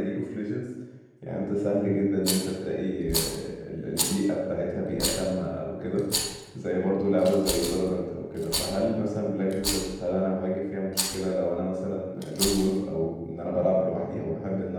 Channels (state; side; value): identical; both; correlation 1.00